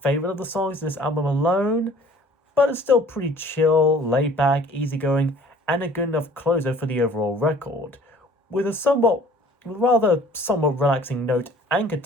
favourite of the songs in this album alone, but it's still pretty chill, laid back, easygoing, and a good enough closer for the overall record, with a somewhat relaxing note and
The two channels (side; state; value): both; normal; correlation 0.51